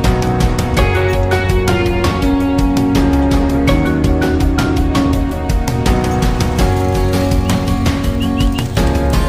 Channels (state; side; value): identical; both; correlation 1.00